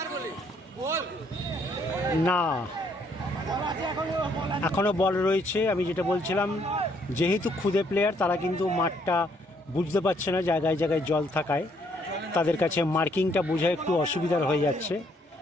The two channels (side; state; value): both; normal; correlation 0.68